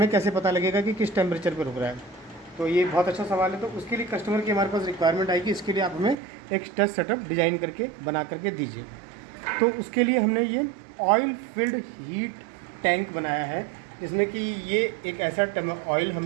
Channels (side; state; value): left; drops out; at 6.2 s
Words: कैसे पता लगेगा कि किस टेम्परेचर पर रुक रहा है। तो ये बहुत अच्छा सवाल है। तो उसके लिए कस्टमर की हमारे पास रिक्वायरमेंट आएगी, इसके लिए आप हमें एक टेस्ट सेटअप डिज़ाइन करके बना करके दीजिए। तो उसके लिए हमने ये ऑयल फिल्ड हीट टैंक बनाया है, जिसमें कि ये एक ऐसा ऑयल